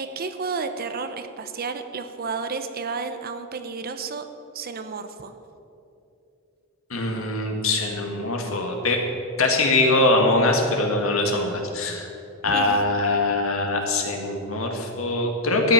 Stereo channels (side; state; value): both; normal; correlation -0.02